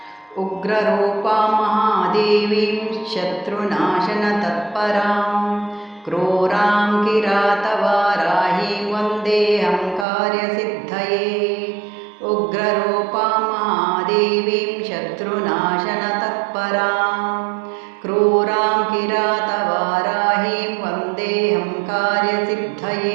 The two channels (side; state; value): left; drops out; at 10.1 s